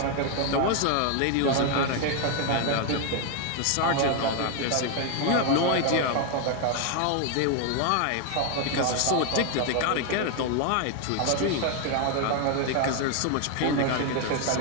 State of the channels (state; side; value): different; both; correlation 0.01